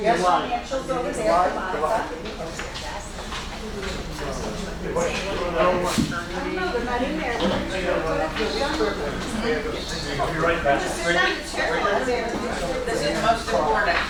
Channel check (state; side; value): identical; both; correlation 1.00